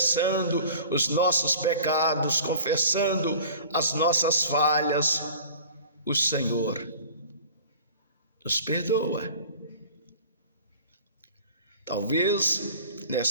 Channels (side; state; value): both; inverted; correlation -0.44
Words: os nossos pecados, confessando as nossas falhas, o Senhor nos perdoa. Talvez